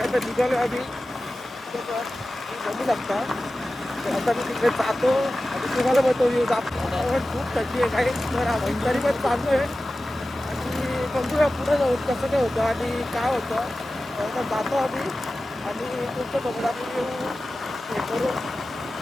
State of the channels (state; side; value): normal; both; correlation 0.95